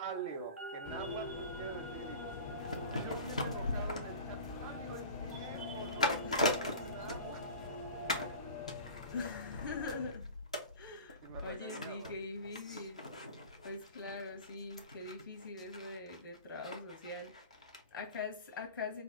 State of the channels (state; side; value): inverted; both; correlation -0.38